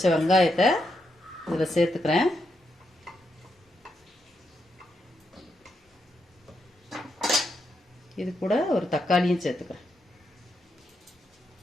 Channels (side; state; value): both; normal; correlation 0.82